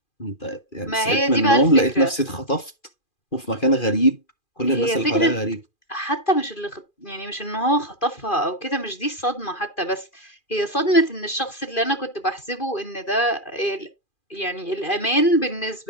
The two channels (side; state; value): right; late; 2.4 ms